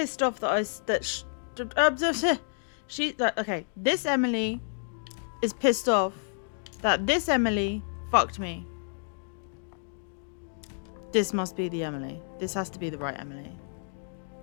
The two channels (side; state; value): right; silent; digital silence